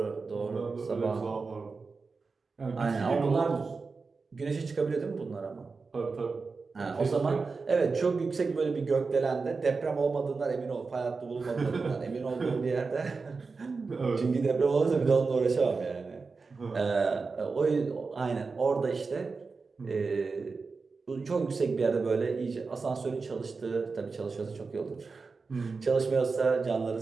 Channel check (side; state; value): left; quieter; 4.4 dB